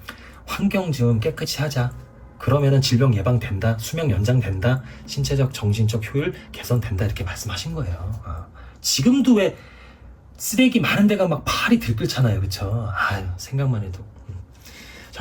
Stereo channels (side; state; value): both; identical; correlation 1.00